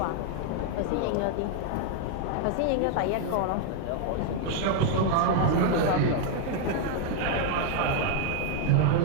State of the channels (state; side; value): different; both; correlation 0.00